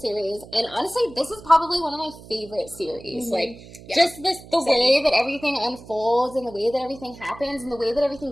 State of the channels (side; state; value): right; noise; hum, 18 dB below the sound